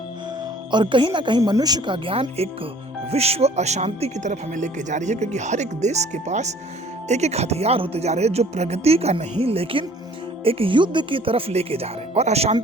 और कहीं ना कहीं मनुष्य का ज्ञान एक विश्व अशांति की तरफ हमें लेके जा रही है, क्योंकि हर एक देश के पास एक एक हथियार होते जा रहे हैं जो प्रगति का नहीं लेकिन एक युद्ध की तरफ लेके जा रहे हैं और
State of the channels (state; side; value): normal; both; correlation 0.54